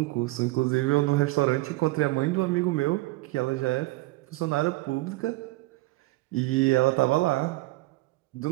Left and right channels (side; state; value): left; quieter; 20.1 dB